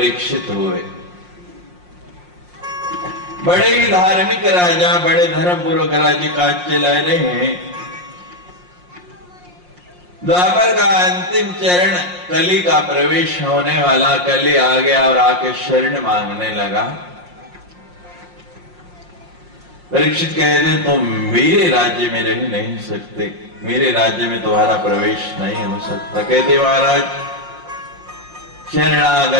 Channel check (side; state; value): left; late; 5.6 ms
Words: हुए, बड़े ही धार्मिक राजा, बड़े धर्मपूर्वक राज्य काज चला रहे हैं। द्वापर का अंतिम चरण, कली का प्रवेश होने वाला, कली आ गया और आके शरण मांगने लगा। परीक्षित कहते तुम मेरे राज्य में रह नहीं सकते, मेरे राज्य में तुम्हारा प्रवेश नहीं हो सकता। कहते महाराज